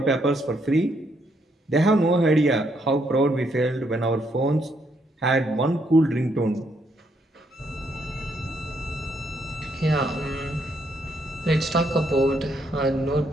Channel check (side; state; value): both; normal; correlation 0.74